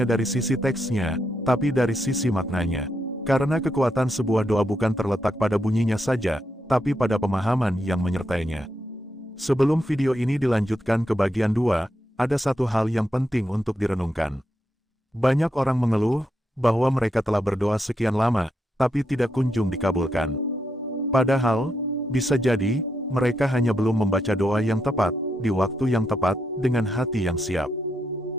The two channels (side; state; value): both; normal; correlation 0.82